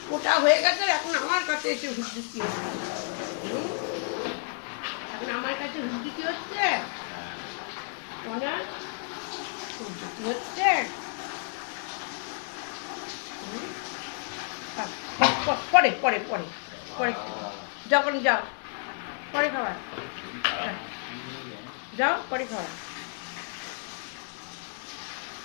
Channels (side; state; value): right; silent; 58 dB below the other